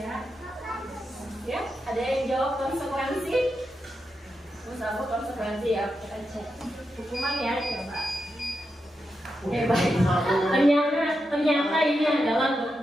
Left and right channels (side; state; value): both; normal; correlation 0.87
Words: Ya, ada yang jawab konsekuensi? Misalnya konsekuensi ya, kita cek. Hukuman ya, coba. Baik. Ternyata ini adalah